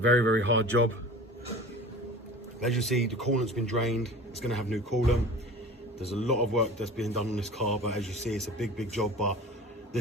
hard job. As you see, the coolant's been drained. It's going to have new coolant. There's a lot of work that's being done on this car, but as you see, it's a big job. But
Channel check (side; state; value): both; normal; correlation 0.39